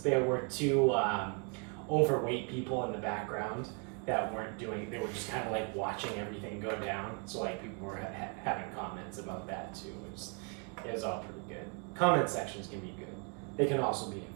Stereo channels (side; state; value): left; quieter; 34.9 dB